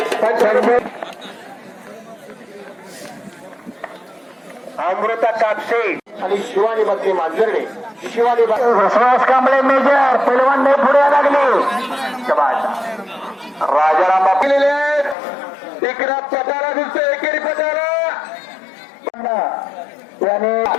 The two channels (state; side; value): drops out; right; at 15.2 s